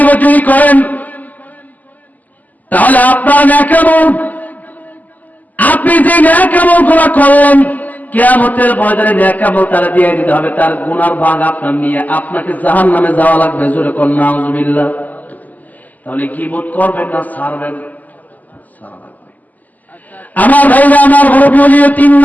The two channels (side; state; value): right; late; 0.081 ms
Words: যদি করেন তাহলে আপনার নেকামল, আপনি যে নেকামলগুলো করলেন কিয়ামতের ময়দানে নেকামল তারা দিয়ে দিতে হবে, তার গুনার ভাগ আপনার নিয়ে আপনাকে জাহান্নামে যাওয়া লাগবে। জোরে কোন নাউজুবিল্লাহ। তাহলে গীবত করবেন না ছাড়বেন? ছাড়া লাগবে। আমার ভাইরা, আমার মুরব্বি, 3